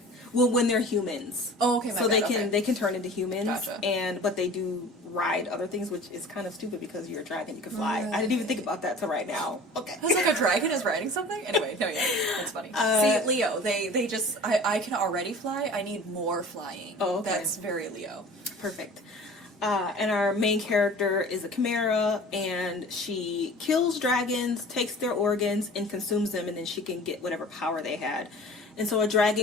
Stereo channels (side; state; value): both; normal; correlation 0.42